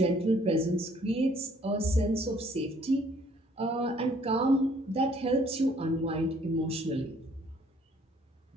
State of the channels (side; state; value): both; normal; correlation 0.61